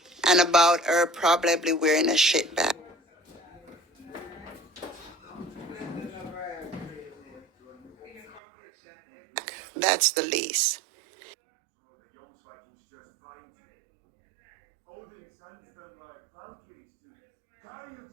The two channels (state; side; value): drops out; left; at 8.4 s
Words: and about her probably wearing a shit bag. That's the least.